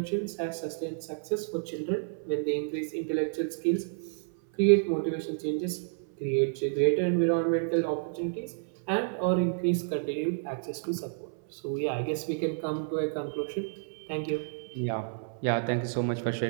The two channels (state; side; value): silent; left; 58 dB below the other